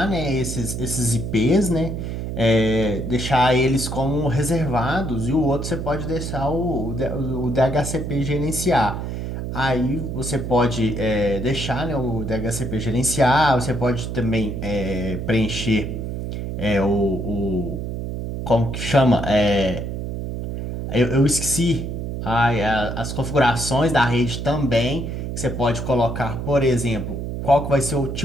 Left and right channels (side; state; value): right; noise; hum, 5 dB below the sound